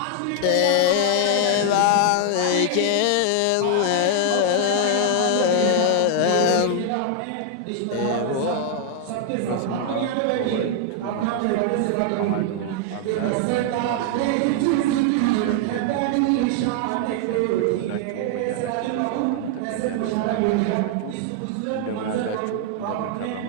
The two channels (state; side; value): different; both; correlation 0.00